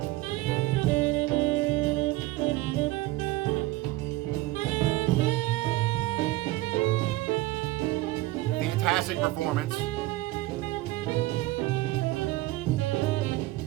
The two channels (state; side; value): quieter; left; 18.3 dB